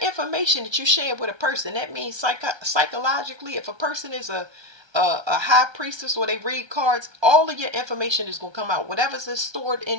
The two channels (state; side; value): late; left; 1.3 ms